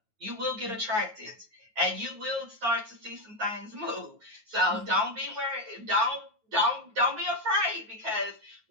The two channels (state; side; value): late; left; 9.4 ms